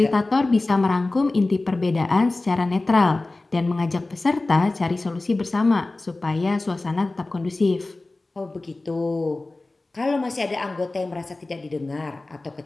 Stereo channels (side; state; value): right; quieter; 3.1 dB